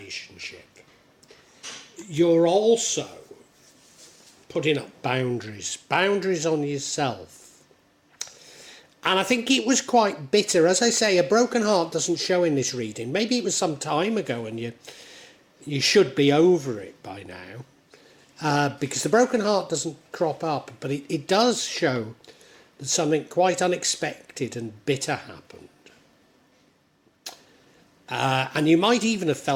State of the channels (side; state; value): both; identical; correlation 1.00